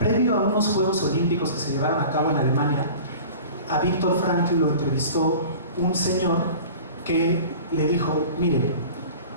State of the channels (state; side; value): inverted; both; correlation -0.40